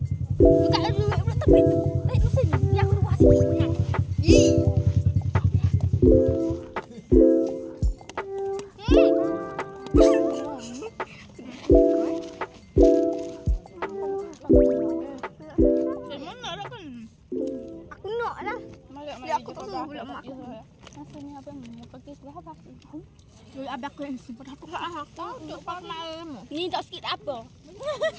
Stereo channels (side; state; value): both; identical; correlation 1.00